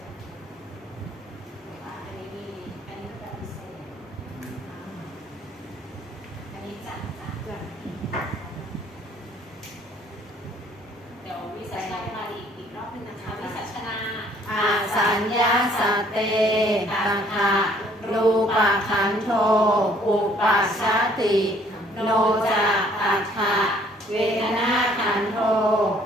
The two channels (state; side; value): normal; both; correlation 0.60